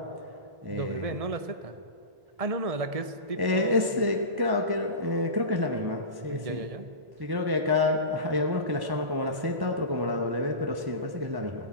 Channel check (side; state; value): left; late; 1.1 ms